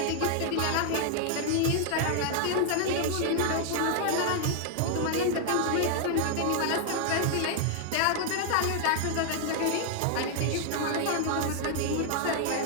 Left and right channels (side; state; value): both; different; correlation 0.00